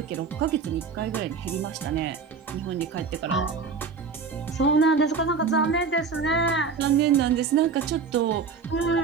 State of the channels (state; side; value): quieter; left; 5.2 dB